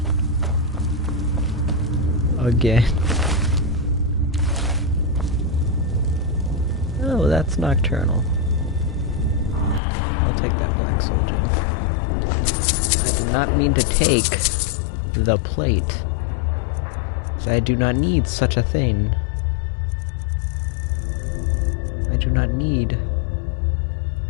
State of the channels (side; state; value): right; drops out; at 9.8 s